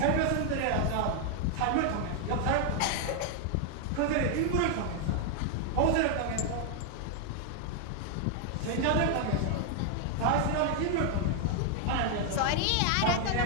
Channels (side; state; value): both; different; correlation 0.00